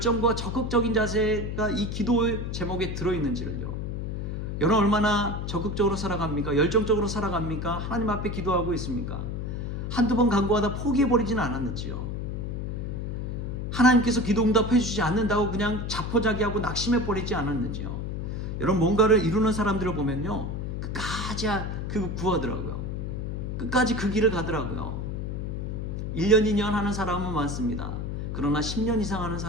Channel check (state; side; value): noise; left; hum, 4 dB below the sound